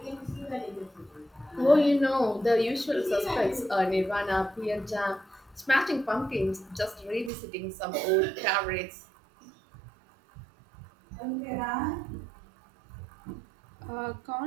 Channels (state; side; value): drops out; left; at 7.3 s